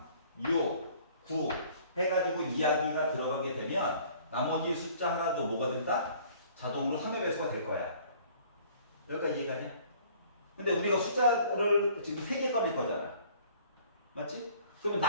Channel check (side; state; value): both; inverted; correlation -0.54